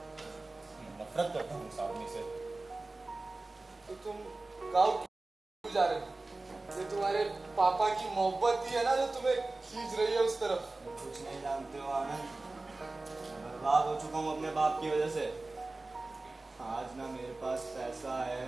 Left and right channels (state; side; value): quieter; left; 3.2 dB